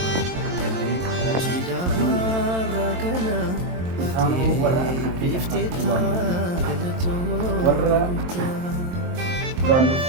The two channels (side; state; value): left; late; 22 ms